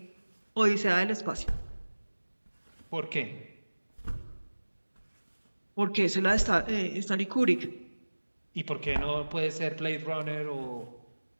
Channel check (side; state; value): both; inverted; correlation -1.00